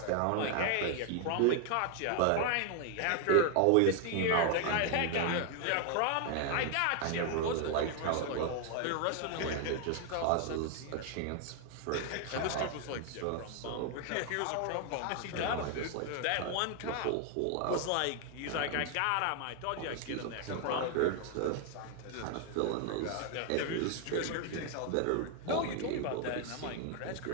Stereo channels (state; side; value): different; both; correlation 0.00